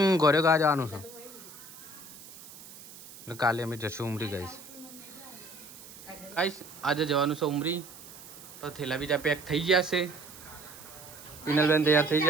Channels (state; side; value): noise; right; hiss, 17 dB below the sound